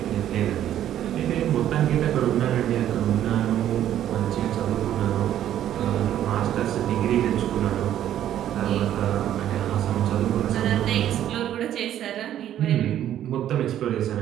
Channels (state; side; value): quieter; left; 11.4 dB